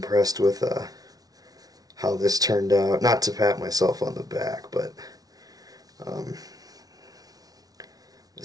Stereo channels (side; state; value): left; late; 0.18 ms